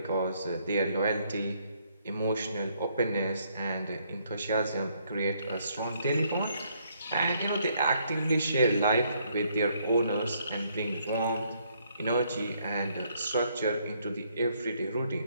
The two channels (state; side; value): inverted; both; correlation -0.70